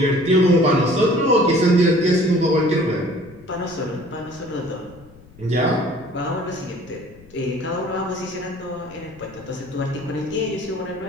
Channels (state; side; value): noise; left; rumble, 23 dB below the sound